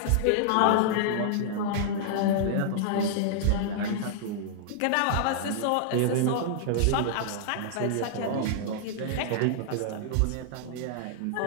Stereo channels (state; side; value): different; both; correlation -0.01